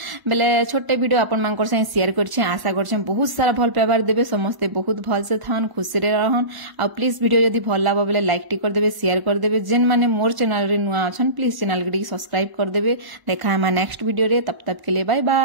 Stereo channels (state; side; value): late; left; 1.0 ms